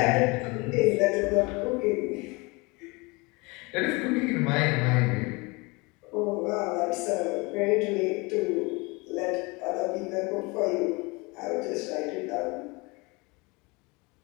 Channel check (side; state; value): right; quieter; 26.5 dB